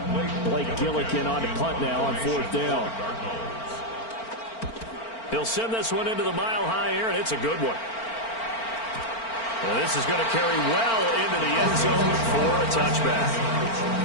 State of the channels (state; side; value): late; right; 4.4 ms